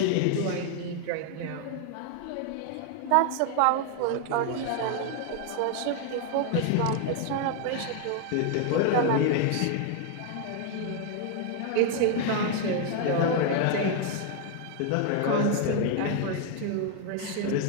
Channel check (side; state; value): both; different; correlation 0.00